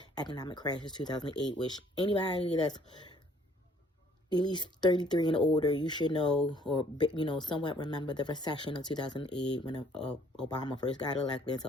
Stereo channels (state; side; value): normal; both; correlation 0.60